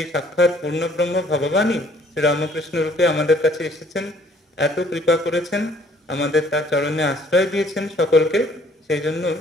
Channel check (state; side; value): normal; both; correlation 0.60